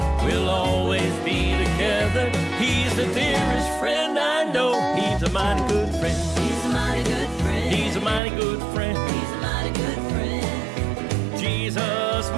we'll always be together. He's the dearest friend I know. He's a mighty good friend. He's a mighty good friend. He's a mighty good friend. He's a mighty good friend. Jesus,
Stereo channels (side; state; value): left; drops out; at 8.2 s